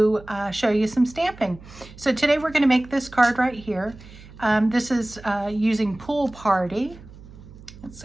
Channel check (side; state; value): right; noise; hum, 19 dB below the sound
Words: show you some stamping. So today we're going to make this card right here. This is using Pool Party. It's